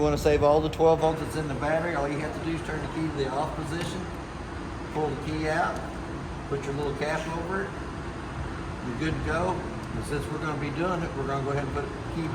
want to save all the 12 volts that's in the battery, all you have to do is turn the key to the off position, pull the key out, put your little cap over it, you're good to go. And since we're going to be doing it, we're going to go ahead and put the key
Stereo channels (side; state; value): both; identical; correlation 1.00